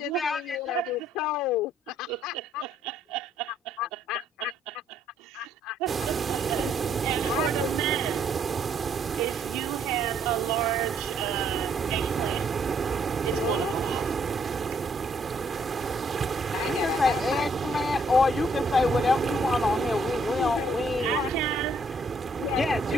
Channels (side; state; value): both; normal; correlation 0.68